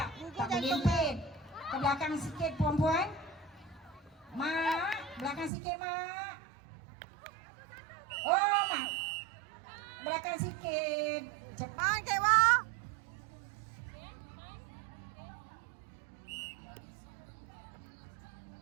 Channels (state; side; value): drops out; left; at 5.5 s